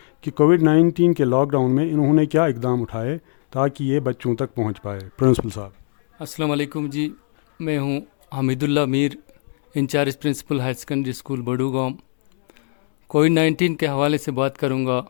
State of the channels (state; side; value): silent; right; digital silence